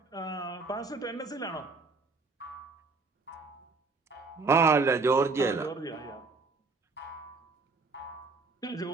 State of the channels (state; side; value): quieter; left; 4.0 dB